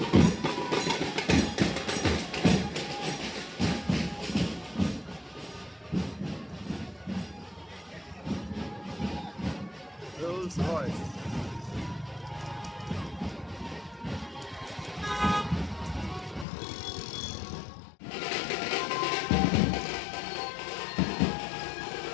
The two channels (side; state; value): right; drops out; at 16.4 s